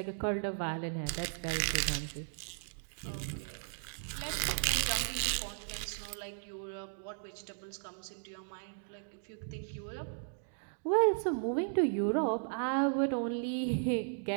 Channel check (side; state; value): left; silent; digital silence